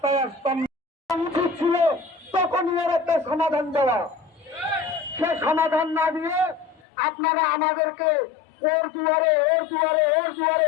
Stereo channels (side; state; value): right; drops out; at 6.8 s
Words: আসতাম না। উচিত ছিল তখনই এর একটা সমাধান দেওয়া। সে সমাধান না দিয়ে আপনারা আমাদেরকে ওর দুয়ারে